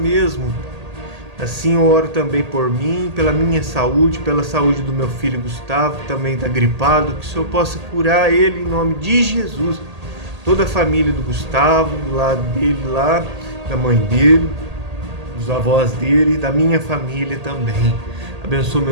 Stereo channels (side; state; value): left; late; 1.8 ms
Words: Assim eu oro também por mim, pela minha saúde, pela saúde do meu filho Gustavo, que também está gripado, que o Senhor possa curar ele em nome de Jesus. toda a família do Gustavo, do lado dele lá, da mãe dele, dos avós dele, da minha família também. Abençoa